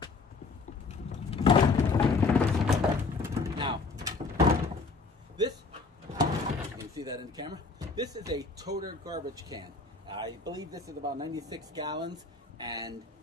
Now, this, you can see that in the camera, this is a Toter garbage can. I believe this is about 96 gallons, and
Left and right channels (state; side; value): quieter; right; 4.1 dB